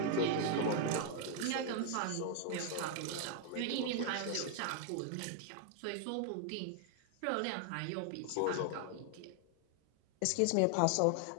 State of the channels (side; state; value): both; different; correlation 0.00